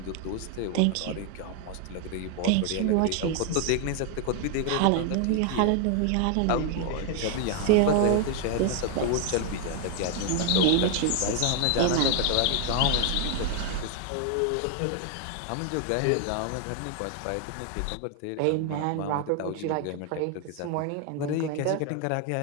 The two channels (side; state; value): both; different; correlation 0.00